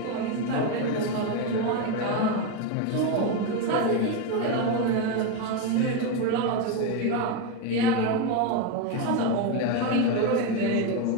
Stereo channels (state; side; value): different; both; correlation 0.03